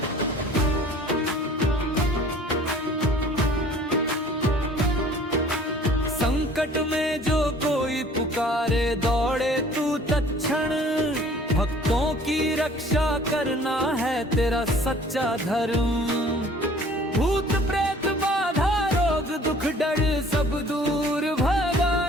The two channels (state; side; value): normal; both; correlation 0.51